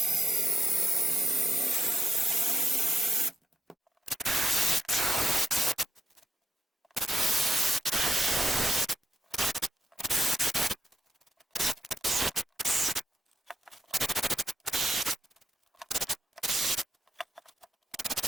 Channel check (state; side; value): normal; both; correlation 0.84